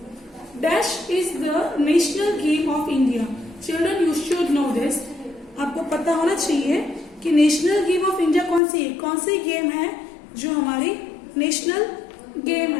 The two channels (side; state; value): right; drops out; at 8.6 s